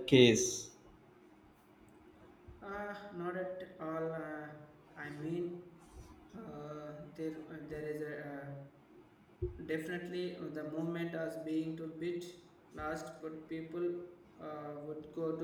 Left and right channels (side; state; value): both; identical; correlation 1.00